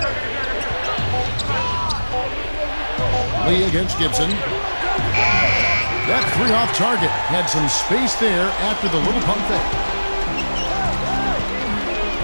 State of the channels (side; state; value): both; inverted; correlation -1.00